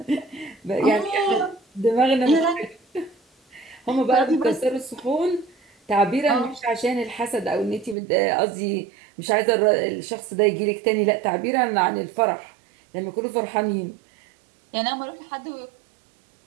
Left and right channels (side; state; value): left; drops out; at 8.0 s